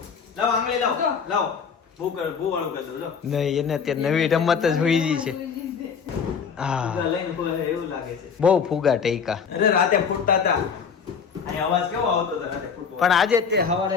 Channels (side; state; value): right; quieter; 6.3 dB